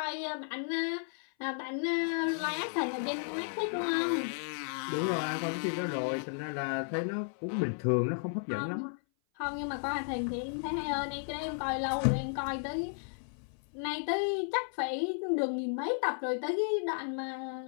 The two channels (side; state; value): right; silent; 55 dB below the other